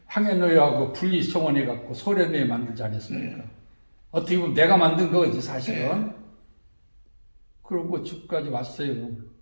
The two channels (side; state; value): both; inverted; correlation -1.00